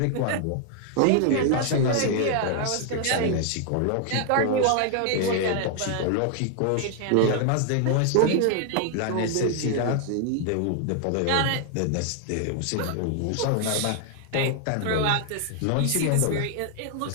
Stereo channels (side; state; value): both; different; correlation 0.00